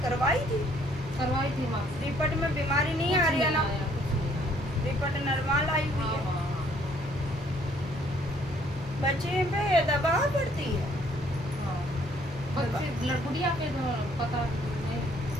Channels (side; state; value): both; normal; correlation 0.63